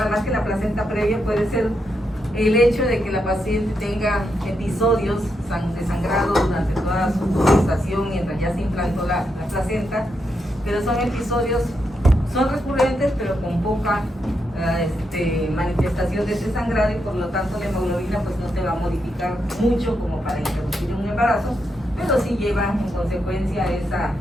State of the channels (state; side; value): normal; both; correlation 0.82